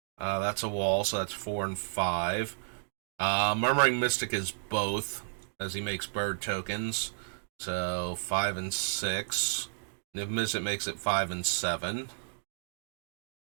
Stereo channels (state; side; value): silent; left; digital silence